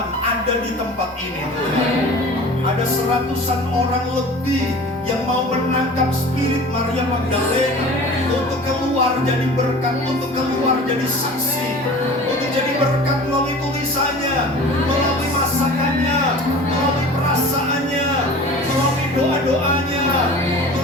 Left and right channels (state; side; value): normal; both; correlation 0.40